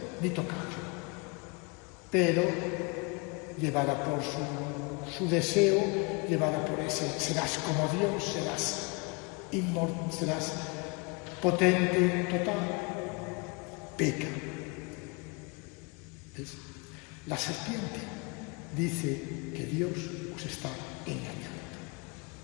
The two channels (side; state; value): right; quieter; 30.3 dB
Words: ni tocarlo. Pero, llevada por su deseo, llevada por ese, serás como Dios, serás inmortal, serás potente, total, peca. ¿Ves? La serpiente dice que Dios os está engañando.